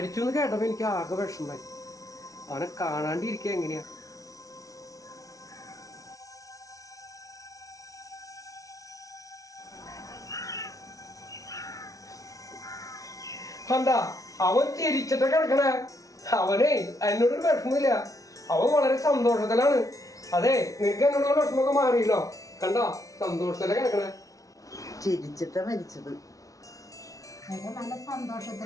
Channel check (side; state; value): right; late; 0.17 ms